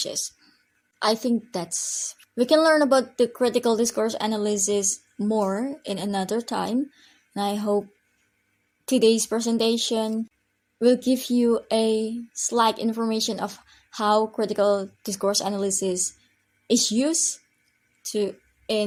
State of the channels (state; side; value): identical; both; correlation 1.00